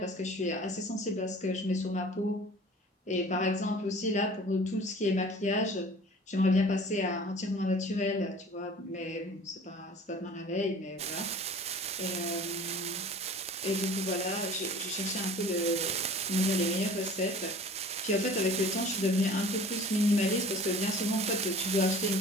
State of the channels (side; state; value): both; normal; correlation 0.45